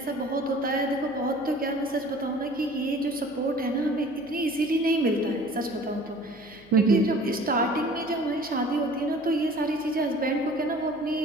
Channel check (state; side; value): noise; left; hum, 27 dB below the sound